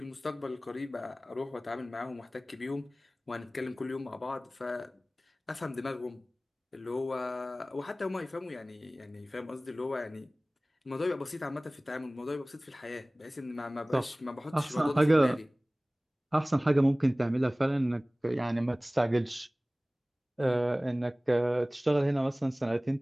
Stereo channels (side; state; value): both; normal; correlation 0.98